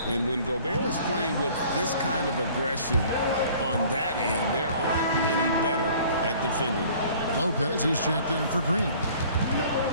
And when Gobert is playing with this kind of aggression on that end, there aren't many better at defending. Lopez is checked in for Green.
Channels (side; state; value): both; inverted; correlation -0.52